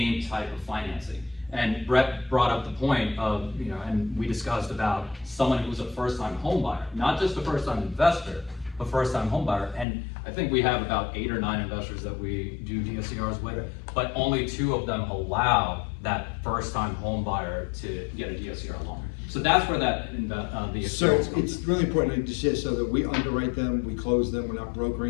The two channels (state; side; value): drops out; right; at 9.9 s